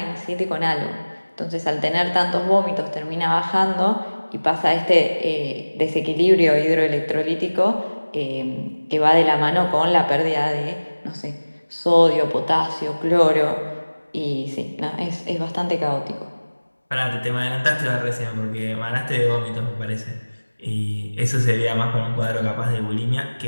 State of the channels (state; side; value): inverted; both; correlation -1.00